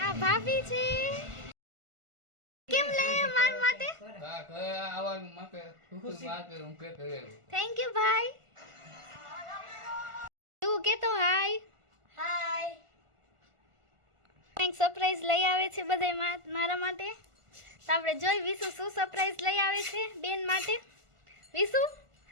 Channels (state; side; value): late; left; 1.5 ms